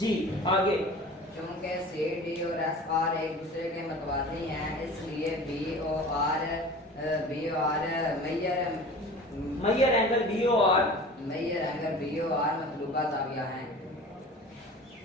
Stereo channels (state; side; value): normal; both; correlation 0.39